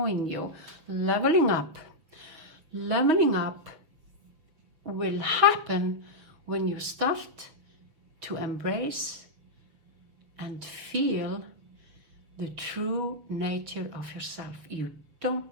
you leveling up. Leveling up will happen when you start to embrace and feel the true nature of yourself. You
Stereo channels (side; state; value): left; late; 6.2 ms